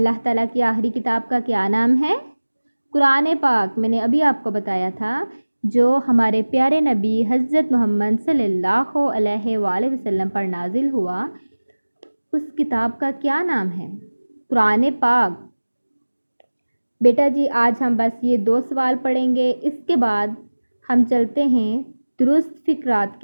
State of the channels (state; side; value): inverted; both; correlation -1.00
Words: تعالیٰ کی آخری کتاب کا کیا نام ہے؟ قرآن پاک۔ میں نے ابھی آپ کو بتایا تھا جو ہمارے پیارے نبی حضرت محمد صلی اللہ علیہ وآلہ وسلم پر نازل ہوا، اس کتاب کا کیا نام ہے؟ قرآن پاک۔ بیٹا جی آج ہم بس یہ 2 سوال پڑھیں گے، اس کے بعد ہم چلتے ہیں درست فقرات